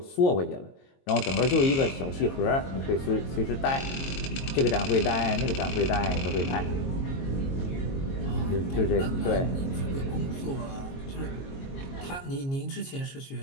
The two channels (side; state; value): right; late; 22 ms